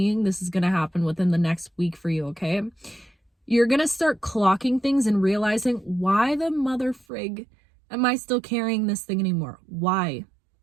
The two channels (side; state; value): left; drops out; at 7.1 s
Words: this is going to happen within the next week for you, okay? You're going to start clocking things and realizing, why the mother frig am I still carrying this thing anymore? Why?